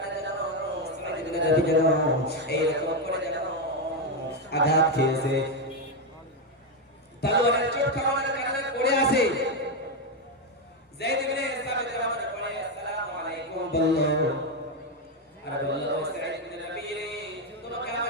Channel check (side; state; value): both; normal; correlation 0.06